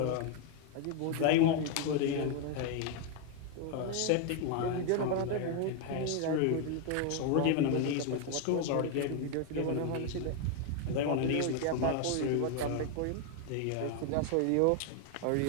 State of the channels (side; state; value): both; different; correlation 0.01